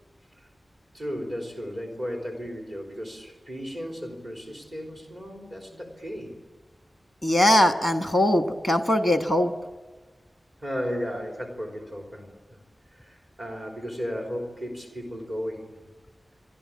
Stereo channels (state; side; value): normal; both; correlation 0.89